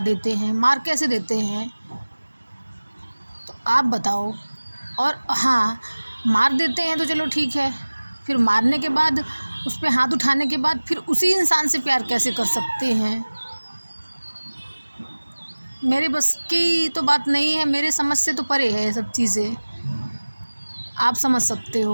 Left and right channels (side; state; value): both; inverted; correlation -1.00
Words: देते हैं, मार कैसे देते हैं, तो आप बताओ। और हाँ, मार देते हैं तो चलो ठीक है, फिर मारने के बाद उस पे हाथ उठाने के बाद फिर उसी इंसान से प्यार कैसे कर सकते हैं। मेरे बस की तो बात नहीं है, मेरे समझ से तो परे है ये सब चीज़ें। आप समझ सकते